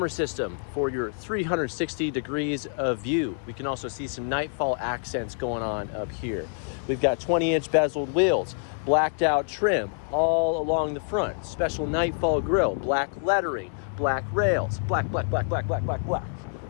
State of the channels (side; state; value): right; silent; 60 dB below the other